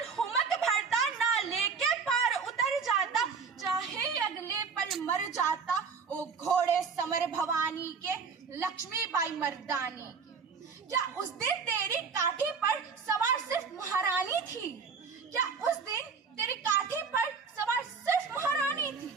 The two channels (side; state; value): left; quieter; 5.5 dB